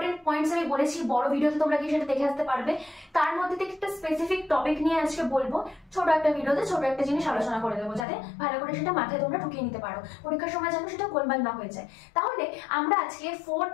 পয়েন্টস আমি বলেছি, বড় ভিডিওতে তোমরা কি সেটা দেখে আসতে পারবে। তার মধ্যে থেকে একটা স্পেসিফিক টপিক নিয়ে আজকে বলবো, ছোট একটা ভিডিওতে ছোট একটা জিনিস আলোচনা করে দেবো, যাতে ভালো করে সেটা মাথায় তোমরা ঢুকিয়ে নিতে পারো, পরীক্ষার সময় যেন সেটা গোলমাল না হয়ে যায়। তাহলে আমরা আজকে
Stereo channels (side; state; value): right; drops out; at 8.1 s